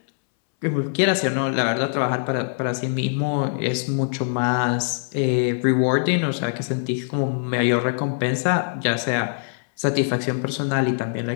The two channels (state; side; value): silent; right; 64 dB below the other